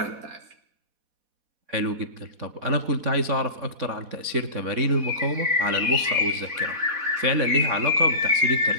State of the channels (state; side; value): late; left; 4.1 ms